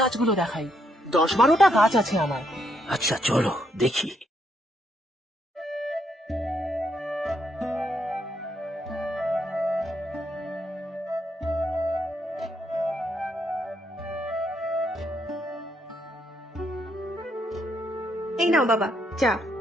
গাছগুলো দেখাই, 10-12টা গাছ আছে আমার। আচ্ছা চলো দেখি। এই নাও বাবা চা।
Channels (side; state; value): both; normal; correlation 0.75